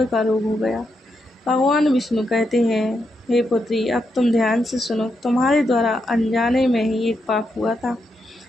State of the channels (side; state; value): both; normal; correlation 0.82